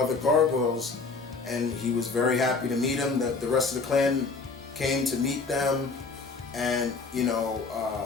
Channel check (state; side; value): quieter; right; 4.2 dB